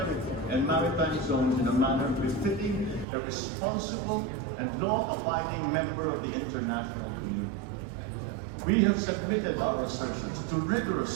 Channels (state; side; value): drops out; left; at 3.1 s